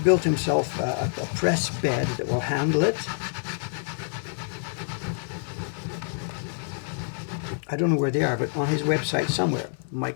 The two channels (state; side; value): silent; right; 60 dB below the other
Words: himself a press bed that will handle it. I don't know where they are, but on his website somewhere,